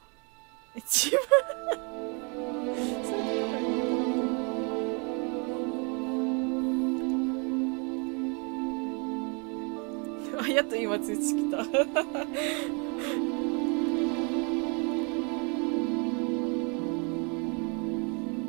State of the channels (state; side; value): quieter; left; 34.3 dB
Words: 一番あ、やっと今通知来た